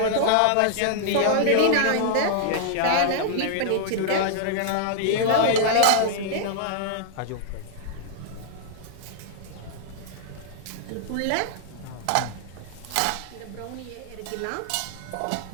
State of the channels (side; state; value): both; different; correlation -0.01